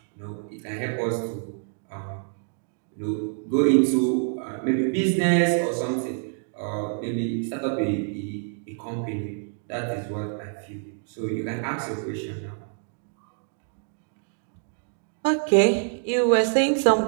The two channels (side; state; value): left; silent; 61 dB below the other